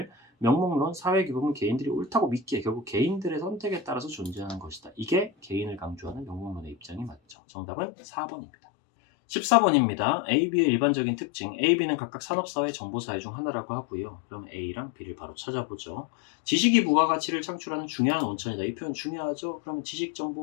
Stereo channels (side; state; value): right; drops out; at 7.4 s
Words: 명목론 사회 규범은 개인들이 옳다고 믿기에 결국 개인들의 선택에 따라서 존재하는 것이다. 이게 개인을 강조하는 명목론의 입장이 맞죠. 정답은 4번입니다. 14번입니다. A, B의 일반적인 특징. A, B는 각각 산업사회, 정보사회 중 하나라고 하고요. 그럼 A랑 B를 바로 찾아보죠. 지식이 부가가치를 창출하는 중요한 원천이다. 이 표현 중요하죠. 그럼 지식